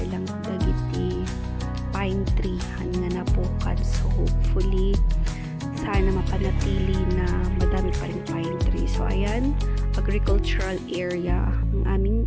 lang dagiti pine tree nga napukan. So hopefully sana mapanatili na madami pa rin pine tree. So ayan, agricultural area ang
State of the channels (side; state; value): both; identical; correlation 1.00